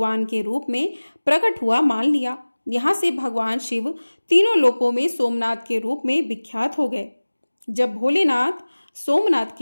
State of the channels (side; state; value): both; inverted; correlation -1.00